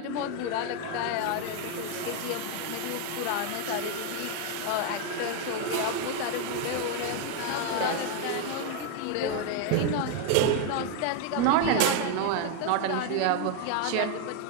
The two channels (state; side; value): different; both; correlation 0.01